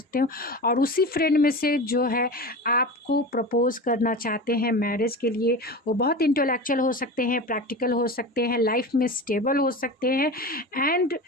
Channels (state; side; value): normal; both; correlation 0.29